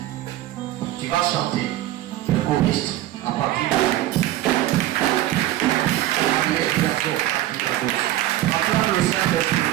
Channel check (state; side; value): quieter; left; 14.5 dB